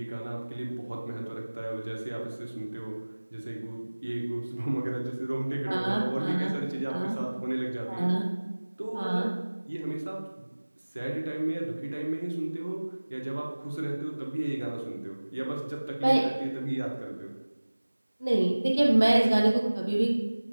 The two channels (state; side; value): inverted; both; correlation -1.00